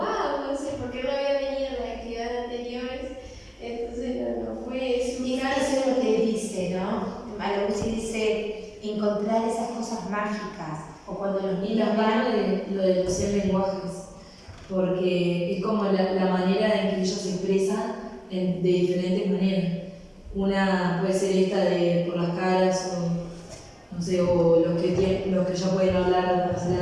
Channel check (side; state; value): both; identical; correlation 1.00